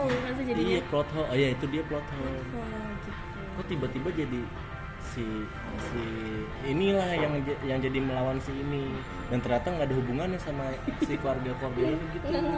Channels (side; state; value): both; identical; correlation 1.00